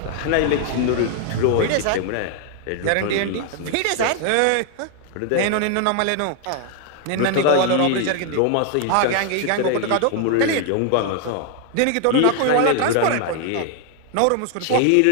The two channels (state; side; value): different; both; correlation 0.00